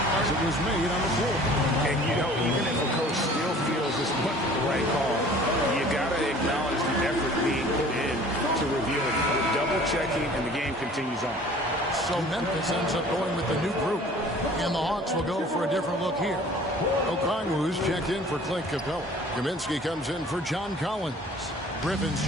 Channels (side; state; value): both; normal; correlation 0.49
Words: as it was made on the floor. And, you know, even if a coach still feels this wasn't the right call, you got to acknowledge the effort being put in to review it. Double-checking, and the game continues on. So Memphis ends up going with the new group. And the Hawks will go for a different look here. Okongwu's checked in for Clint Capella. Kaminsky comes in for John Collins. Griffin's